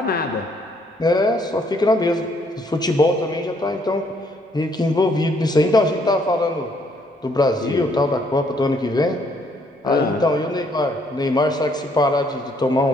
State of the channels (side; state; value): both; normal; correlation 0.68